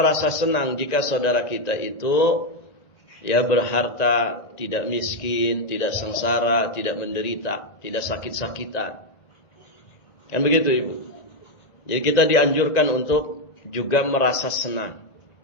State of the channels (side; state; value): right; late; 1.9 ms